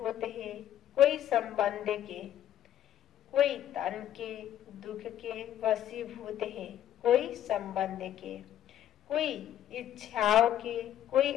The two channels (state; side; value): quieter; right; 11.3 dB